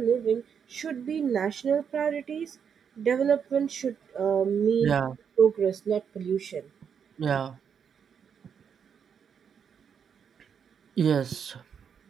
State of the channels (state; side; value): quieter; left; 7.3 dB